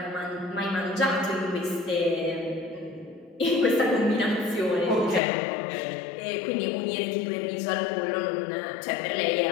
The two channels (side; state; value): right; drops out; at 5.2 s